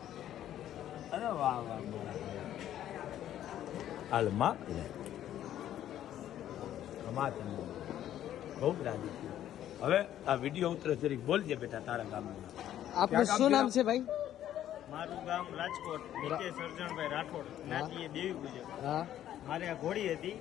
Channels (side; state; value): right; quieter; 11.7 dB